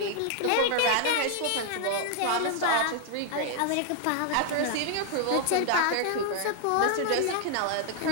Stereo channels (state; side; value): different; both; correlation 0.00